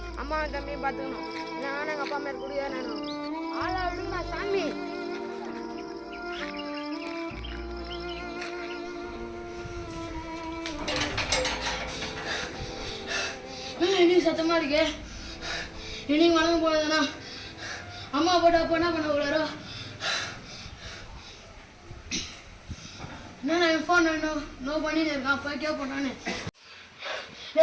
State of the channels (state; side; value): identical; both; correlation 1.00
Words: அம்மாவை தம்பியும் பார்த்துக்கணும். இல்லைன்னா எங்கள் அப்பா மேலே குடிக்கார வேணும். ஆளா விடுங்க சாமி. இன்னைக்கு சத்தமா இருக்கு. இன்னைக்கு வளர்ந்து போனதுன்னா அம்மா போட்டு அப்போ என்ன பண்ண கூடாரோ. என்ன நான் ஃபோன் நோ பண்ணிட்டு இருக்கான். போய் கேட்போம் நானு.